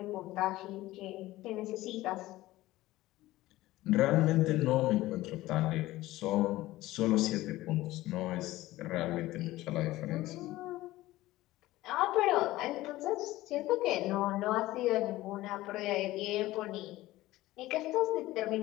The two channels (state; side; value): quieter; right; 17.1 dB